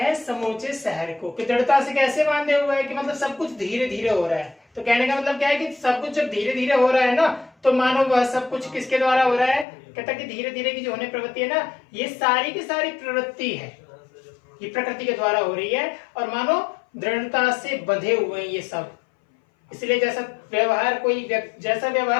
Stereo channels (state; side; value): drops out; right; at 9.7 s